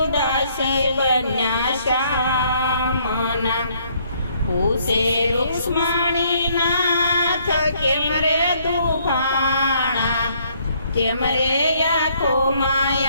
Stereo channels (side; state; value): both; inverted; correlation -0.66